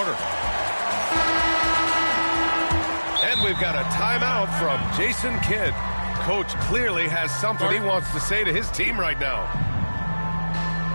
And we've got a timeout from Jason Kidd. Coach clearly has something he wants to say to his team right now.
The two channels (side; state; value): both; inverted; correlation -1.00